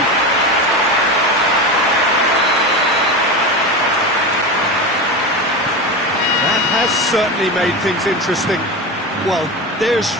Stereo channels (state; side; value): normal; both; correlation 0.22